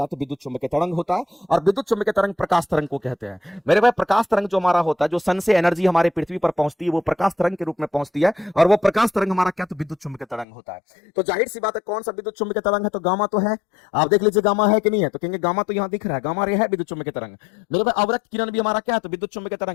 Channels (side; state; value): right; drops out; at 10.5 s